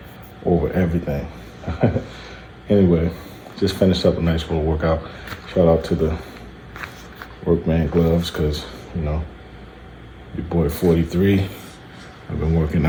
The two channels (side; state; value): both; identical; correlation 1.00